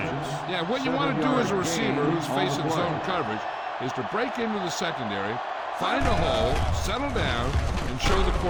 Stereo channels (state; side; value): identical; both; correlation 1.00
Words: Yeah, what you want to do as a receiver who's facing zone coverage is to break into the secondary, find a hole, settle down, and show the